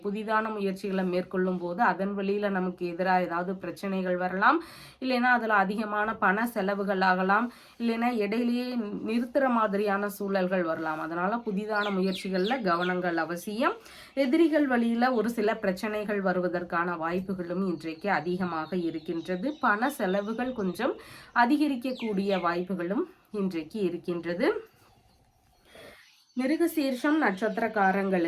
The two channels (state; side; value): identical; both; correlation 1.00